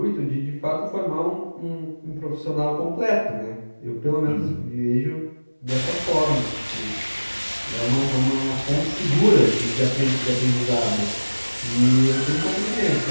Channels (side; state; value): both; inverted; correlation -1.00